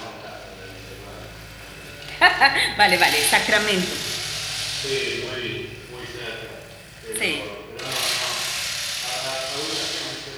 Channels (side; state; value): both; identical; correlation 1.00